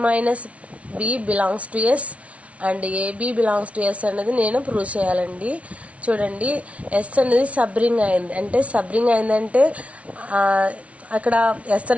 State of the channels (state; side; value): late; left; 0.064 ms